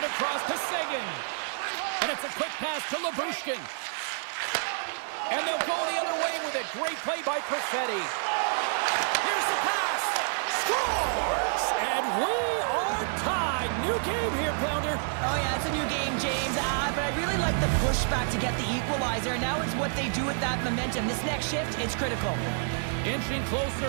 across to Seguin. And it's a quick pass to Labushkin. And they'll go the other way with it. Great play by Perfetti. Here's the pass. Scores! And we are tied. New game here, Pounder. Oh, yeah, it's a new game, James. But I really like the pushback to get the equalizer. Now it's what they do with that momentum. This next shift, it's critical. Inching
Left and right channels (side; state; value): left; silent; digital silence